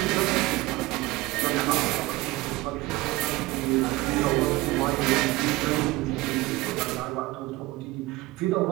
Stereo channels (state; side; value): quieter; left; 20.0 dB